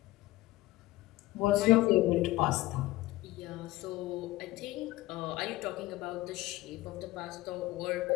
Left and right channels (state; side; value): quieter; right; 18.0 dB